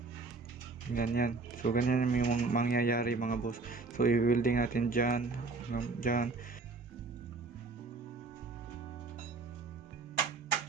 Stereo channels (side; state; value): left; quieter; 3.8 dB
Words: Ganyan. So ganyan yung mangyayari mga boss. So i-welding natin dyan. Dyan.